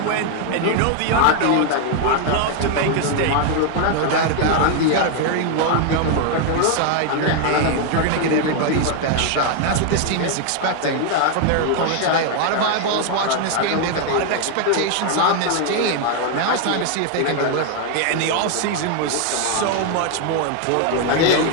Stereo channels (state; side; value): different; both; correlation 0.01